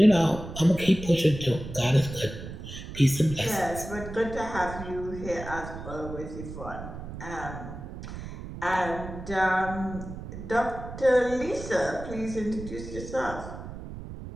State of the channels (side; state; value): right; noise; rumble, 10 dB below the sound